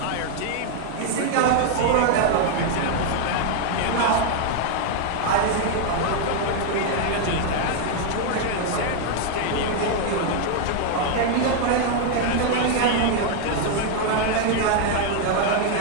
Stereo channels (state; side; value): different; both; correlation 0.01